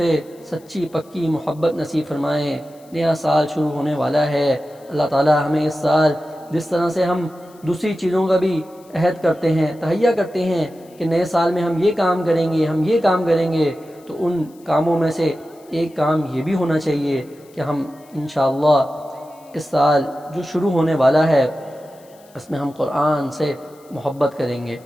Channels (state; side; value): noise; left; hiss, 29 dB below the sound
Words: سچی پکی محبت نصیب فرمائے۔ نیا سال شروع ہونے والا ہے، اللہ تعالی ہمیں اس سال جس طرح سے ہم دوسری چیزوں کا بھی عہد کرتے ہیں، تہیہ کرتے ہیں کہ نئے سال میں ہم یہ کام کریں گے، ہم یہ کام کریں گے، تو ان کاموں میں سے ایک کام یہ بھی ہونا چاہیے کہ ہم انشاءاللہ اس سال جو شروع ہونے والا ہے اس میں ہم قرآن سے محبت کریں گے،